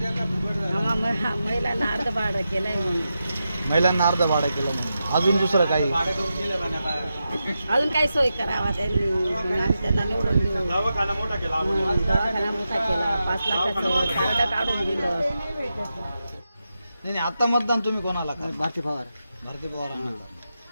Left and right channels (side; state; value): both; inverted; correlation -0.89